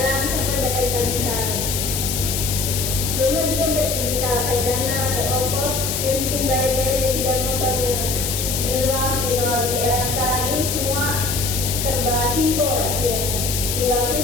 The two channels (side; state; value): left; noise; hiss, 2 dB below the sound